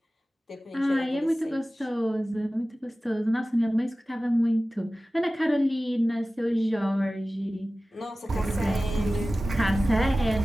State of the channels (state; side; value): normal; both; correlation 0.96